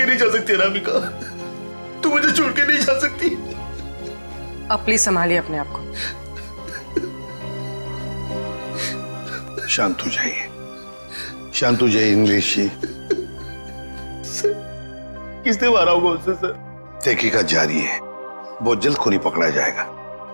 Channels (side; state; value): both; inverted; correlation -1.00